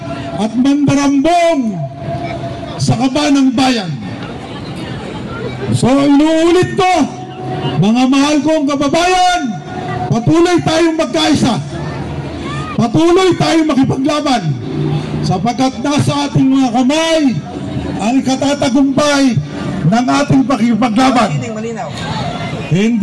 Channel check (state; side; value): identical; both; correlation 1.00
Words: at mandarambong sa kaba ng bayan. So inuulit ko, mga mahal kong kababayan, patuloy tayong magkaisa, patuloy tayong makipaglaban, sapagkat nasa ating mga kamay ang ikatatagumpay ng ating pakipaglaban.